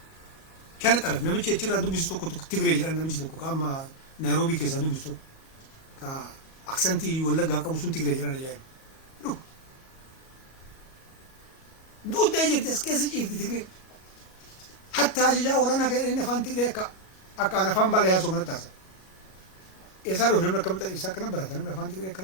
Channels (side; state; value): right; late; 37 ms